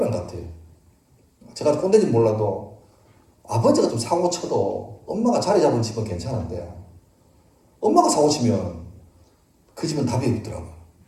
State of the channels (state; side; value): identical; both; correlation 1.00